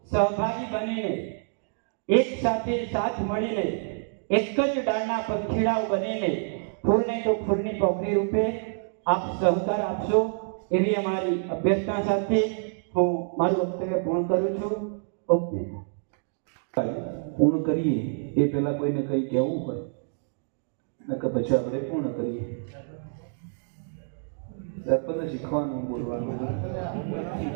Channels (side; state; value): left; silent; digital silence